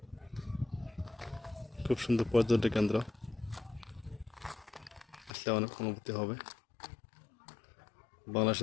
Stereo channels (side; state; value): right; drops out; at 5.3 s